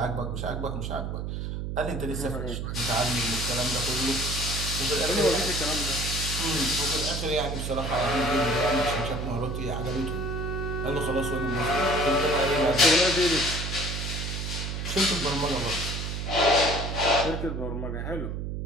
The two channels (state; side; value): noise; right; hum, 4 dB below the sound